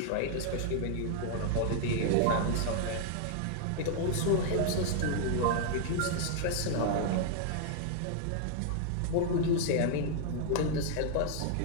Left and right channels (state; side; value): different; both; correlation 0.00